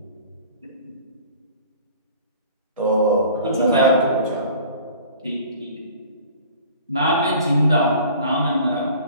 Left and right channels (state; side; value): inverted; both; correlation -0.46